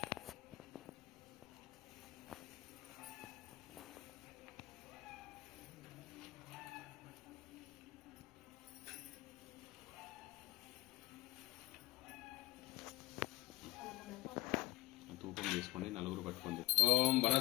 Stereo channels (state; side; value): quieter; right; 18.4 dB